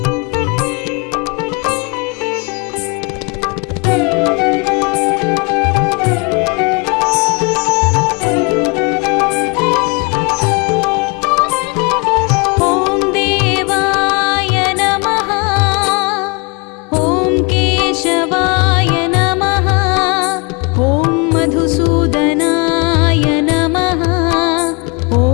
ॐ देवाय नमः। ॐ केशवाय नमः। ॐ मधुसूदनाय नमः। ॐ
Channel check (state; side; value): quieter; right; 30.4 dB